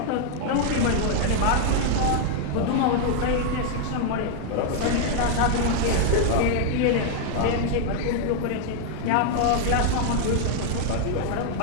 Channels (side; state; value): both; different; correlation 0.00